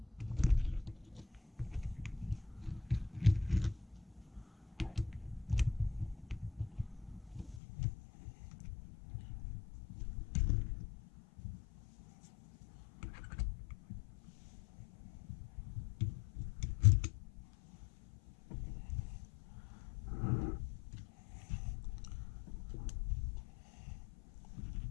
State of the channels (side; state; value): right; drops out; at 7.6 s